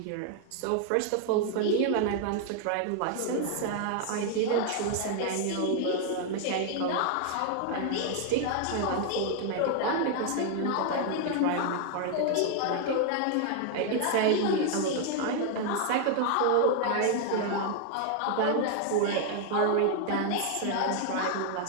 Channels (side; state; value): both; different; correlation 0.00